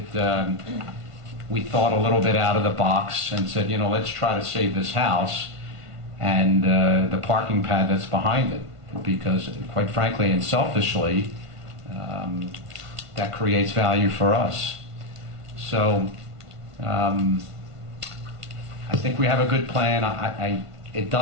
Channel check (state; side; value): late; left; 1.5 ms